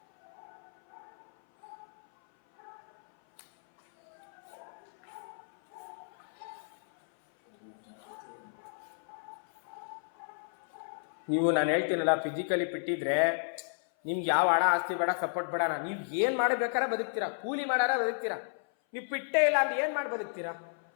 ನೀವು ನಾನು ಹೇಳ್ತೀನಲ್ಲ, ಫಿಸಿಕಲಿ ಬಿಟ್ಟಿದ್ರೆ ನಿಮ್ಗೆ ಯಾವ ಹಣ ಆಸ್ತಿ ಬೇಡ, ಸಪೋರ್ಟ್ ಬೇಡ. ನೀವು ಏನು ಮಾಡಬೇಕಾದ್ರೆ ಬದುಕ್ತೀರಾ, ಕೂಲಿ ಮಾಡಾರ ಬದುಕ್ತೀರಾ. ನೀವು ಪಿಟ್ಟೇ ಇಲ್ಲ ಅಂದ್ರೆ ಏನು ಮಾಡಿ ಬದುಕ್ತೀರಾ?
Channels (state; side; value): silent; right; 56 dB below the other